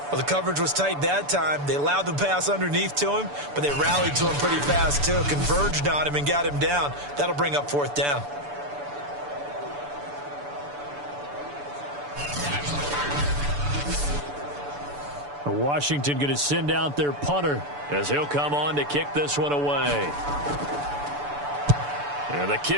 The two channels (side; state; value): left; late; 6.9 ms